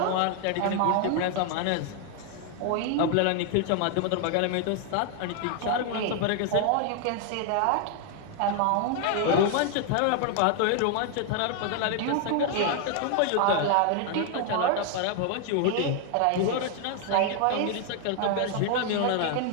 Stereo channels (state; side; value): different; both; correlation 0.00